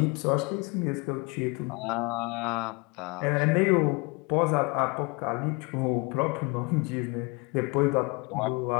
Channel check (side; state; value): right; quieter; 28.6 dB